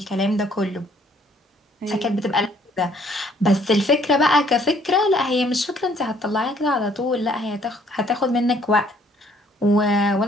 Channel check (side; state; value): both; normal; correlation 0.62